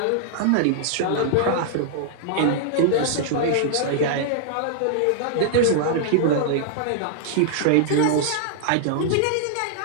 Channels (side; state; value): both; different; correlation -0.01